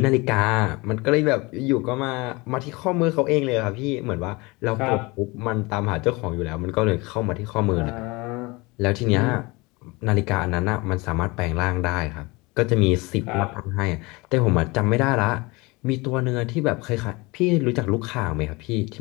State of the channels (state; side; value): quieter; right; 24.7 dB